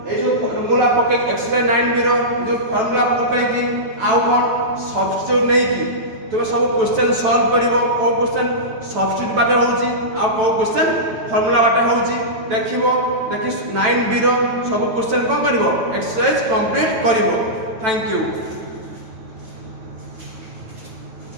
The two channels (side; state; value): left; late; 9.1 ms